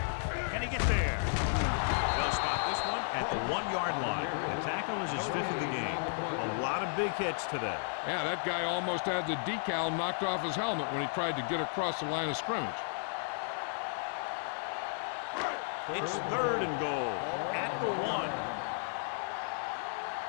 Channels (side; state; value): right; silent; 55 dB below the other